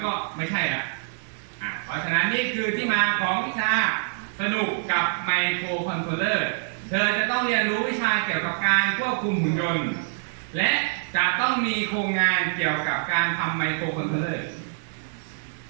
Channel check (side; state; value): left; silent; digital silence